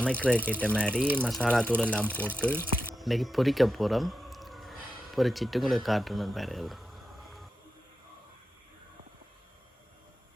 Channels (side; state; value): both; normal; correlation 0.89